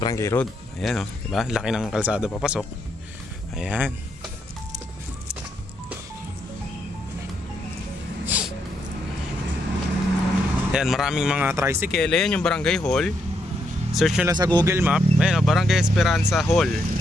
road. Ayan, diba? Laki ng kalsada papasok. Ayan. Ayan, maraming mga tricycle. Ayan yung barangay hall. Search nyo lang sa Google Map. Ayan, Barangay Esperanza Hall.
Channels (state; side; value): normal; both; correlation 0.78